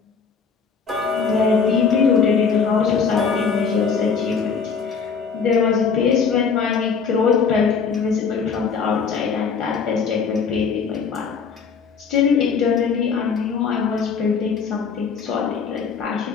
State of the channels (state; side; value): quieter; right; 5.8 dB